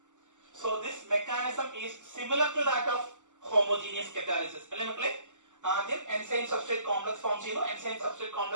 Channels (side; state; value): left; late; 0.85 ms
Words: So this mechanism is similar to that of homogeneous catalysis. അല്ലേ മക്കളെ? ആദ്യം enzyme substrate complex form ചെയ്യുന്നു, enzyme substrate